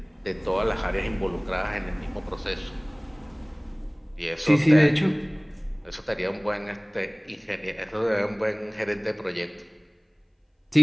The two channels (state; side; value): identical; both; correlation 1.00